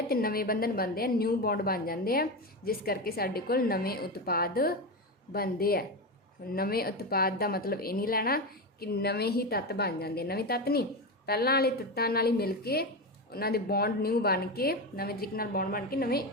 ਤੇ ਨਵੇਂ ਬੰਧਨ ਬਣਦੇ ਆ, ਨਿਊ ਬੌਂਡ ਬਣ ਜਾਂਦੇ ਆ, ਜਿਸ ਕਰਕੇ ਸਾਡੇ ਕੋਲ ਨਵੇਂ ਉਤਪਾਦ ਬਣਦੇ ਆ। ਨਵੇਂ ਉਤਪਾਦ ਦਾ ਮਤਲਬ ਇਹ ਨਹੀਂ ਲੈਣਾ ਕਿ ਨਵੇਂ ਹੀ ਤੱਤ ਬਣ ਜਾਂਦੇ, ਨਵੇਂ ਤੱਤ ਨਹੀਂ, ਪਹਿਲਾਂ ਵਾਲੇ ਤੱਤਾਂ ਨਾਲ ਹੀ ਮਿਲ ਕੇ ਉਹਨਾਂ ਦੇ ਬੌਂਡ ਨਿਊ ਬਣ ਕੇ, ਨਵੇਂ ਤਰੀਕੇ ਨਾਲ ਬੌਂਡ ਬਣ ਕੇ ਨਵੇਂ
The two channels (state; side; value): normal; both; correlation 0.17